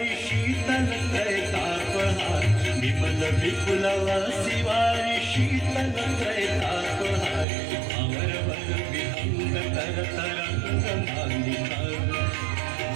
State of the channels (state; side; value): drops out; left; at 7.5 s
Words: शीतल त्रैतापहार विमल विपुलवासी वारी शीतल त्रैतापहार अमर वर विहंग तर तरंग मालिका